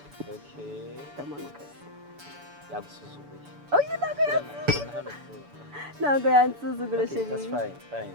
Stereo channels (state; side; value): late; left; 6.9 ms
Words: Okay. Ndamanuka. Yagusuzuguye. Oh, you ntabwo Urabona hano ku- ntabwo yansuzugura Okay, that's sheri. fine.